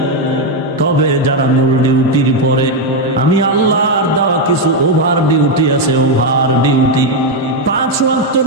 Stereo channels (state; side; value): normal; both; correlation 0.04